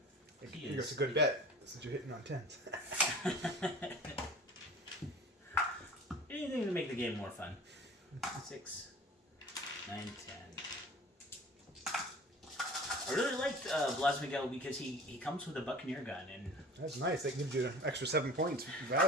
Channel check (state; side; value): normal; both; correlation 0.42